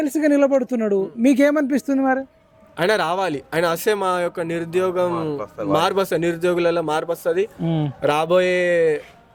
నిలబడుతున్నాడు, మీకు ఏమనిపిస్తుంది మరి? ఆయన రావాలి, ఆయన వస్తే మా యొక్క నిరుద్యోగం మార్పు వస్తుంది, నిరుద్యోగులలో మార్పు వస్తుంది. రాబోయే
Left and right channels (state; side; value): identical; both; correlation 1.00